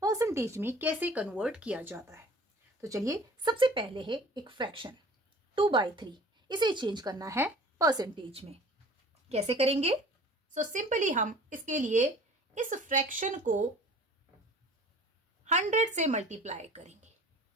परसेंटेज में कैसे कन्वर्ट किया जाता है। तो चलिए, सबसे पहले है एक फ्रैक्शन 2/3, इसे चेंज करना है परसेंटेज में। कैसे करेंगे? सो सिंपली हम इसके लिए इस फ्रैक्शन को 100 से मल्टीप्लाई करेंगे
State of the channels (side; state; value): both; normal; correlation 0.47